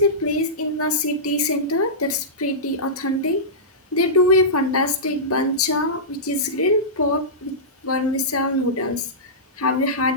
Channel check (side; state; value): both; normal; correlation -0.17